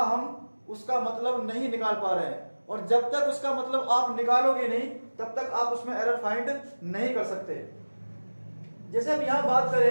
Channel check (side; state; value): both; inverted; correlation -1.00